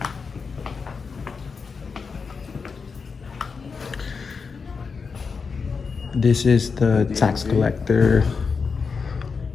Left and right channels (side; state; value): right; quieter; 5.2 dB